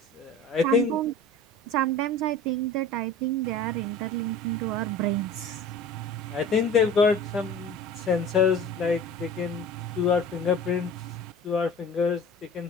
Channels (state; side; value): normal; both; correlation 0.40